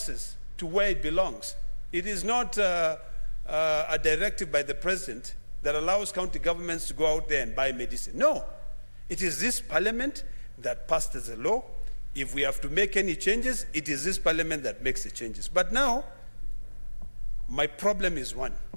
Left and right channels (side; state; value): both; inverted; correlation -1.00